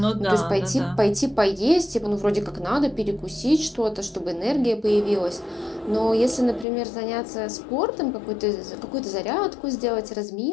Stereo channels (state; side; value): drops out; right; at 6.7 s